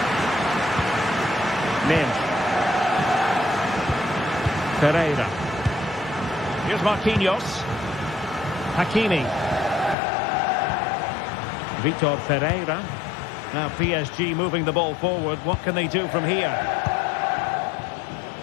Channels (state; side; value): drops out; right; at 10.0 s